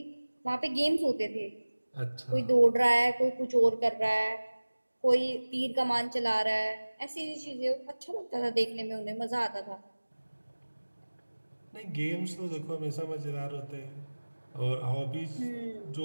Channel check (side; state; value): both; inverted; correlation -1.00